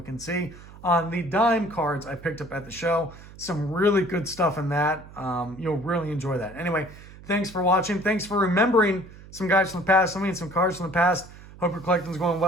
and see. On the dime cards I picked up at the show. Some really good stuff in that. You'll really enjoy that. Anyway, thanks for watching. Thanks for remembering some guys from the past. I mean, some cards from the past. Hope your collecting's going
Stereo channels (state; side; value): noise; right; hum, 18 dB below the sound